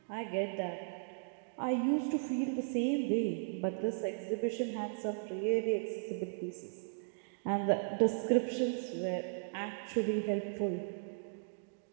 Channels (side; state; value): left; silent; digital silence